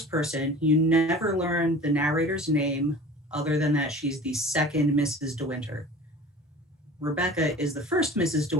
person. You never learn the narrator's name other than that she's the second Mrs. De Winter. Rebecca is the first Mrs. De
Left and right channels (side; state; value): both; normal; correlation 0.40